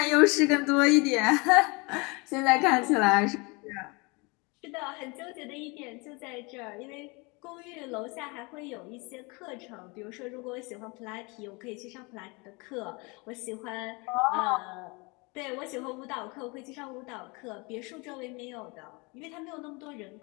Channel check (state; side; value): quieter; right; 28.2 dB